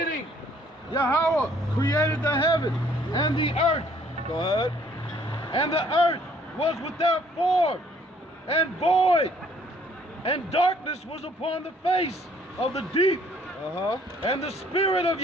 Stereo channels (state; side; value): normal; both; correlation 0.61